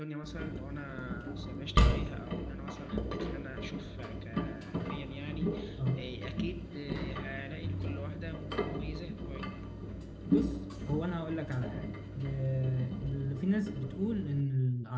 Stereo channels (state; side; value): identical; both; correlation 1.00